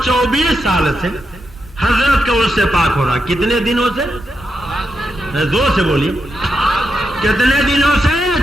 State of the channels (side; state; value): both; normal; correlation 0.85